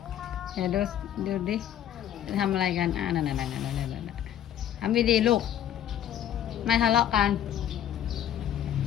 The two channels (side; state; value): right; quieter; 10.8 dB